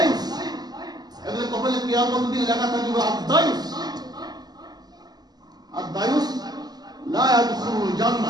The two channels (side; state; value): left; late; 0.20 ms